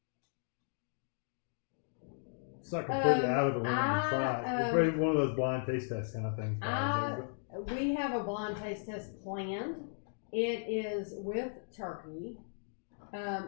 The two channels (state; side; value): silent; right; digital silence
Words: It's not completely out of the realm to try. It's probably one of those blind taste test kind of things. We have a blind taste test planned. It is with turkey.